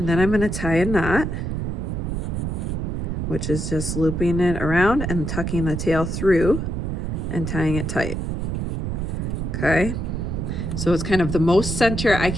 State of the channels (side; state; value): right; noise; rumble, 2 dB below the sound